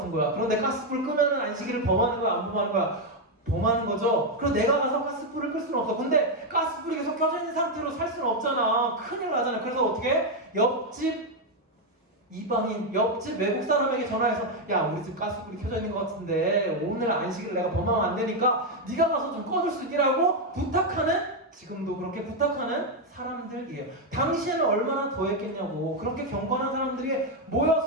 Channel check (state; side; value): normal; both; correlation 0.03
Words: 거야. 그런데 가스불 끄면은 안식일을 범하는 거야, 안 범하는 거야? 더 많은 거죠. 그리고 내가 가서 가스불을 끌 수는 없어. 근데 가스불이 계속 켜져 있는 상태로 살 수는 없잖아. 큰일 나잖아. 그래서 어떻게? 옆집 이방인, 옆집 외국 사람에게 전화해서 야, 우리 집 가스불이 켜져 있는 것 같은데 오늘 안식일 내가 범하면 안 되니까 네가 가서 좀 꺼줄 수 있기라고 부탁하는, 지금도 그렇게 부탁하는 사람들이에요. 당시에는 얼마나 더했겠냐고. 그렇게 경건한 사람들이